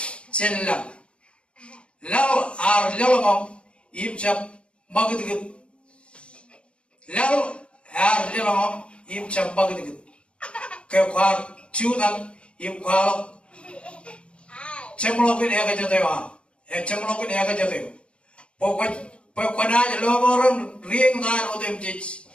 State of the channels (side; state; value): right; late; 0.058 ms